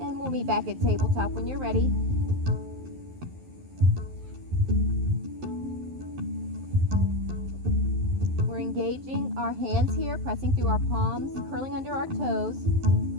And we'll meet back at tabletop when you're ready. Engaging our hands here, pressing through our palms, curling under our toes,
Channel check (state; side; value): late; left; 11 ms